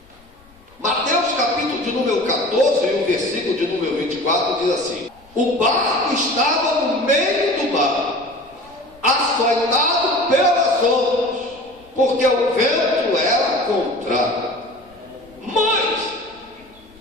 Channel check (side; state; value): left; noise; rumble, 28 dB below the sound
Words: Mateus capítulo de número 14, e o versículo de número 24 diz assim: o barco estava no meio do mar, açoitado pelas ondas, porque o vento era contrário. Mas,